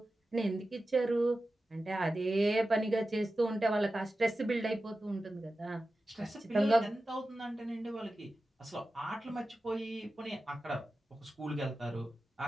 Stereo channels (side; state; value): both; normal; correlation 0.94